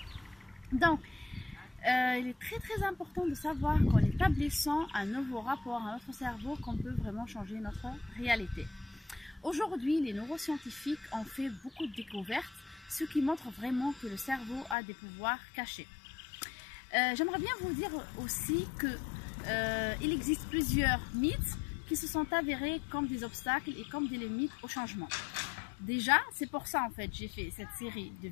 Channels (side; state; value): right; drops out; at 14.8 s